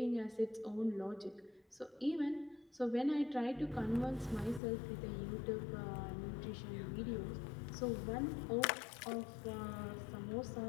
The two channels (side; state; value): right; drops out; at 4.6 s